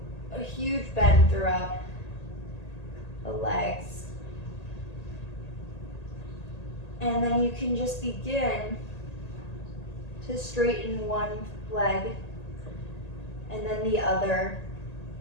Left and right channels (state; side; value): late; right; 1.8 ms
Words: a huge bend throughout the legs. And then you can just begin to straighten one leg and then the other.